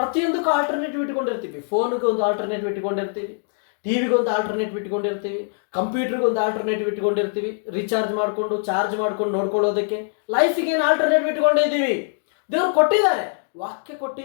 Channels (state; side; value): silent; right; digital silence